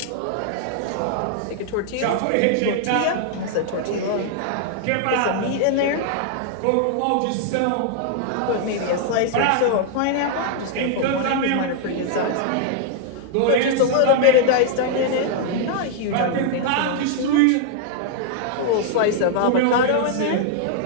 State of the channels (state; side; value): different; both; correlation 0.00